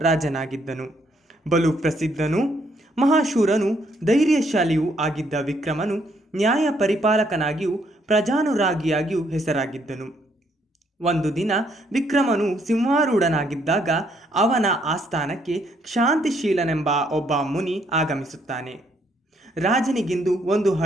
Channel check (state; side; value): normal; both; correlation 0.70